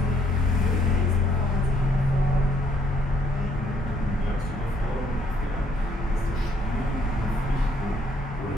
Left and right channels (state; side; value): normal; both; correlation 0.68